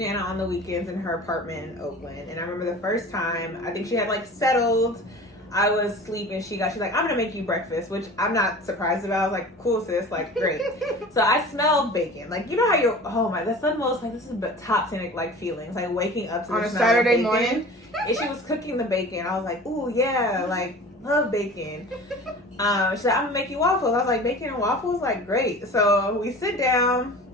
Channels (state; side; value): normal; both; correlation 0.39